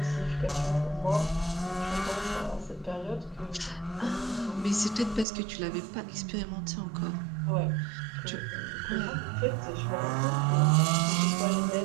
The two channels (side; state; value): left; drops out; at 5.2 s